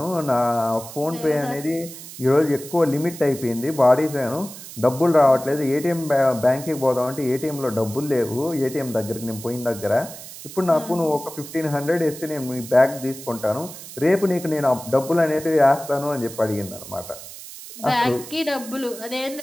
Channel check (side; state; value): right; noise; hiss, 14 dB below the sound